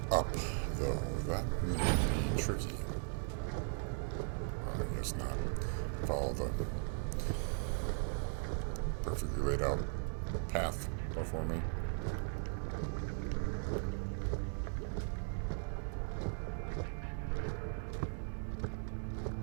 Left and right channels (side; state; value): left; silent; 52 dB below the other